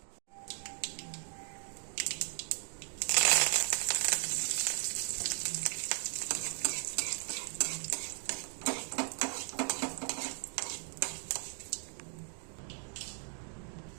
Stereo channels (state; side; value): silent; left; 53 dB below the other